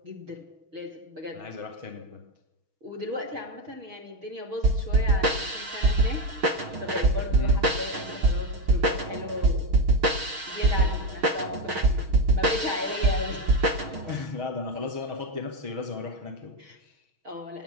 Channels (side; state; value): left; late; 6.3 ms